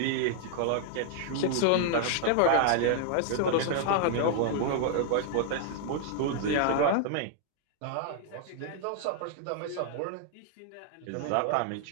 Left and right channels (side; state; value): both; different; correlation -0.01